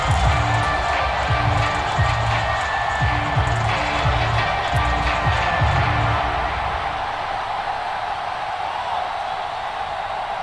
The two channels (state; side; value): identical; both; correlation 1.00